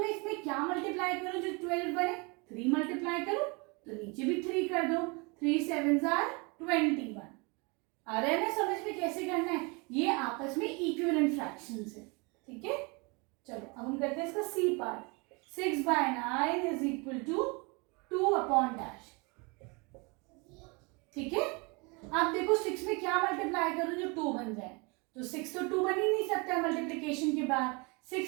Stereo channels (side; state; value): left; quieter; 29.5 dB